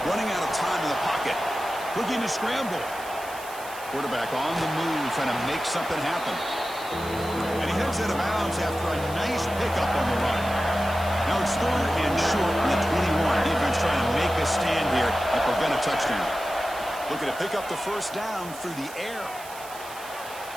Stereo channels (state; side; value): noise; right; hiss, 16 dB below the sound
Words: Running out of time in the pocket. Looking to scramble. Quarterback on the move, trying to make something happen. And he heads out of bounds after a nice pickup on the run. Now it's third and short in the 21. Defense trying to make a stand here and prevent a touchdown. Looking to pick up the first down through the air.